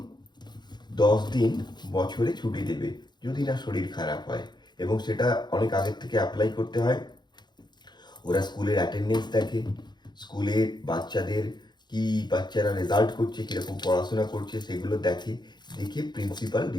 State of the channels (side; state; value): right; late; 0.21 ms